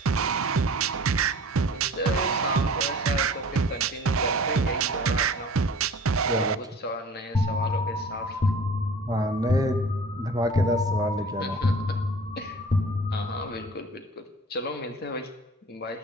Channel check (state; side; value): normal; both; correlation 0.44